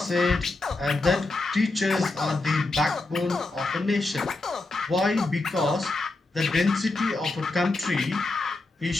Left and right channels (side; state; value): right; quieter; 3.1 dB